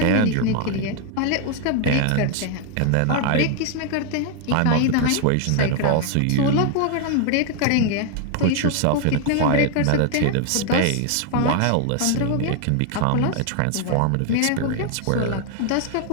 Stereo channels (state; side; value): different; both; correlation 0.00